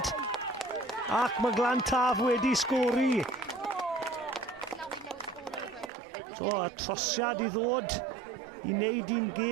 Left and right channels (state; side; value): drops out; left; at 5.9 s